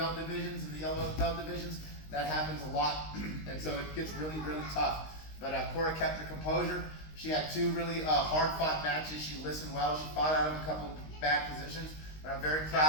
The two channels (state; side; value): late; right; 19 ms